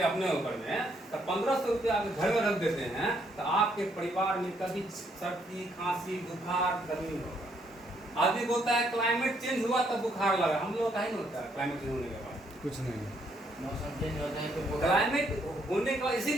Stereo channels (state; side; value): normal; both; correlation 0.71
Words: अपने ऊपर में, तो 1500 रुपया अगर घर में रख देते हैं तो आपके परिवार में कभी सर्दी खांसी बुखार गर्मी होगा। आदमी बोलता है क्लाइमेट चेंज हुआ तब बुखार लगा, हम लोग का ही नहीं होता है क्लाइमेट चेंज होने के बाद, कुछ नहीं। मौसम चेंज होता है तो क्लाइमेट होने का